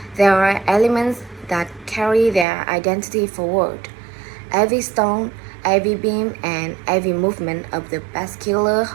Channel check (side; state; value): left; drops out; at 2.5 s